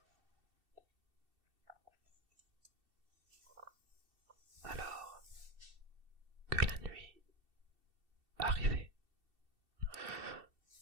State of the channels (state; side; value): late; left; 2.7 ms